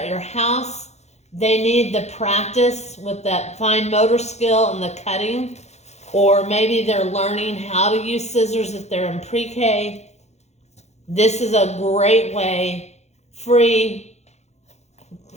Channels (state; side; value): late; right; 0.32 ms